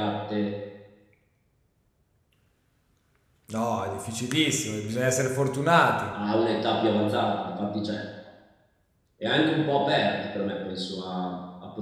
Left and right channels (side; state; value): both; identical; correlation 1.00